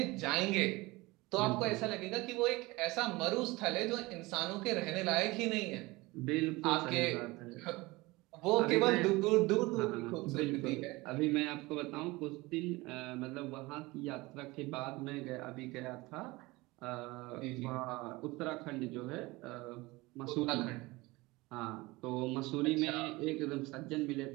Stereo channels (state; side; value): quieter; left; 21.9 dB